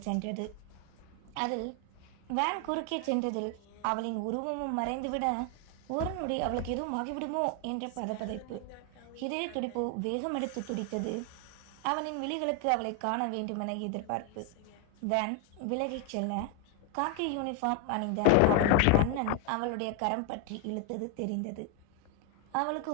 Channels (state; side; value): different; both; correlation 0.01